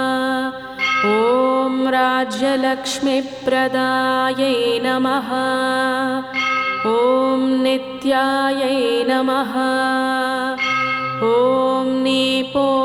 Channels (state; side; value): identical; both; correlation 1.00